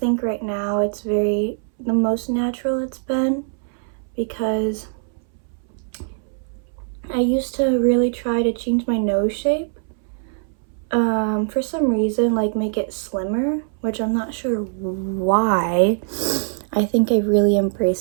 right now it's the most natural it's been, because I used to really try to change my nose shape, for some reason, like make it slimmer, which I'm not sure why. I think I really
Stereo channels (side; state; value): left; silent; 63 dB below the other